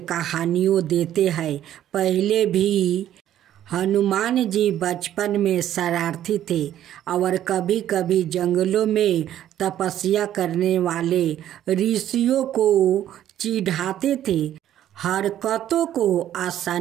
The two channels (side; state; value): left; quieter; 11.7 dB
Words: कहानियों देते हैं। पहले भी हनुमान जी बचपन में शरारती थे और कभी कभी जंगलों में तपस्या करने वाले ऋषियों को चिढ़ाते थे, हरकतों को